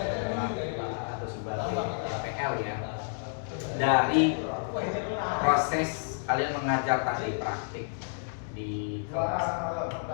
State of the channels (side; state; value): right; silent; digital silence